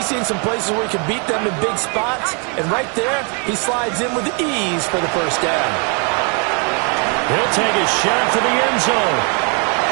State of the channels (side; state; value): left; quieter; 36.7 dB